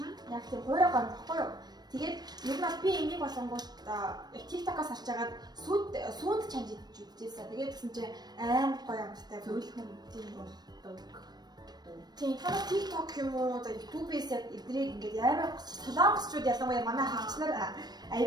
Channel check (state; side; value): late; left; 0.19 ms